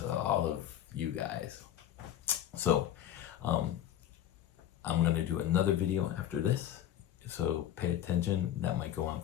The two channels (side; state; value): right; quieter; 11.4 dB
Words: all of you guys. So I'm going to do another video after this, so pay attention. That might go on